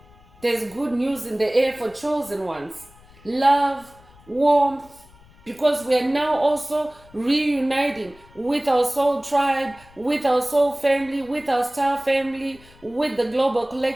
There's good news in the air for chosen ones. Love, warmth, because we are now also reuniting with our soul tribe, with our soul family, with our star family, with the global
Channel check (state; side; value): noise; left; rumble, 26 dB below the sound